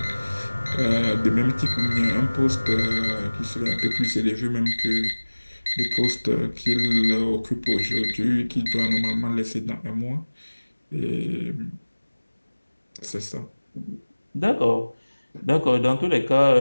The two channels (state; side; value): inverted; both; correlation -1.00